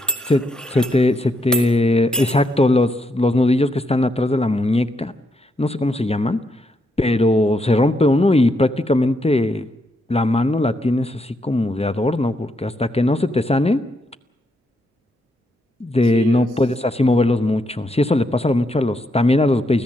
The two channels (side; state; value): both; normal; correlation 0.78